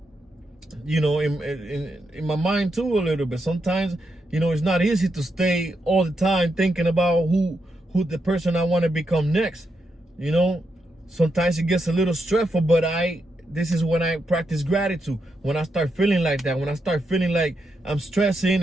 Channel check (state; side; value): normal; both; correlation 0.83